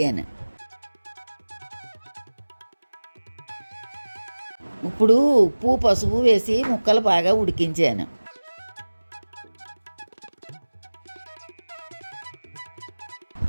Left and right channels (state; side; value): inverted; both; correlation -1.00